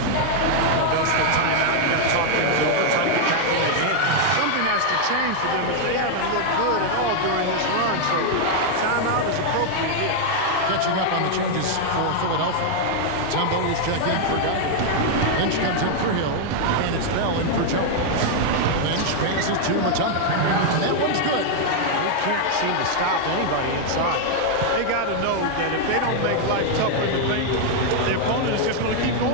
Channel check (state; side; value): different; both; correlation 0.00